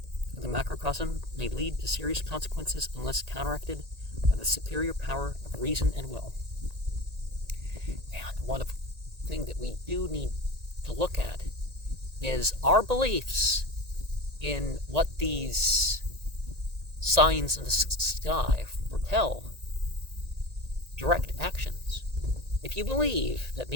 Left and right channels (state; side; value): late; left; 1.8 ms